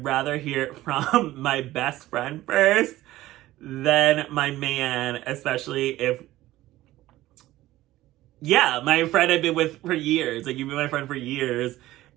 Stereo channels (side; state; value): left; quieter; 16.1 dB